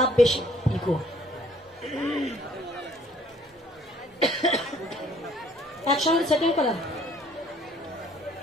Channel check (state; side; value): normal; both; correlation 0.59